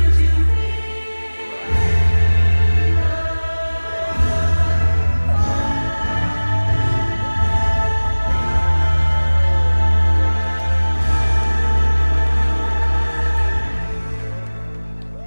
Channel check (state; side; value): inverted; both; correlation -1.00